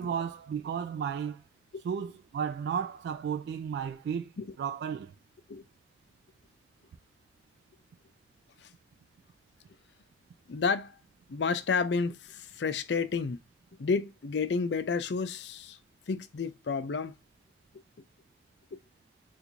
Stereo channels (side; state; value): both; normal; correlation 0.15